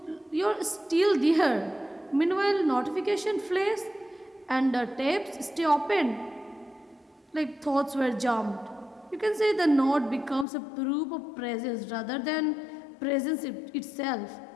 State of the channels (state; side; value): drops out; right; at 10.5 s